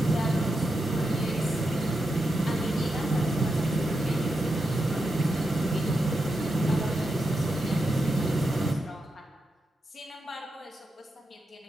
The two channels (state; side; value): normal; both; correlation 0.86